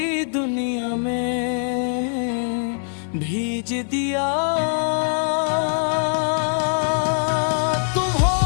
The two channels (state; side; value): silent; right; 64 dB below the other